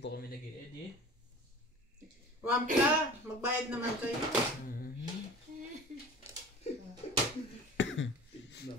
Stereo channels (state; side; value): normal; both; correlation 0.40